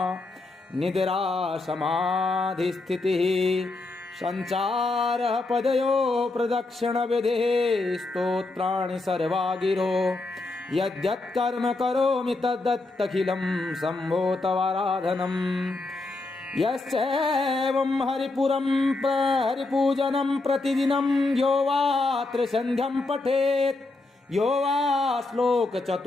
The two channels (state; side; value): quieter; right; 3.2 dB